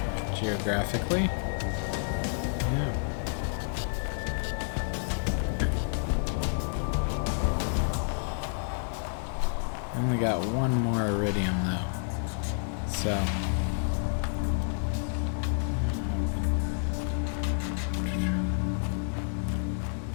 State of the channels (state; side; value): silent; right; 58 dB below the other